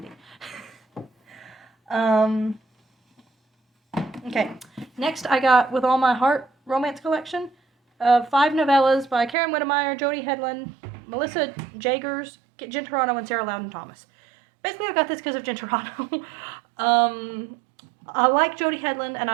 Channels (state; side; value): drops out; left; at 9.3 s